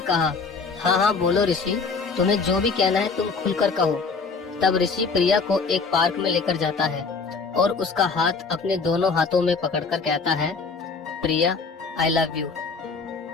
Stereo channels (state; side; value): quieter; right; 4.8 dB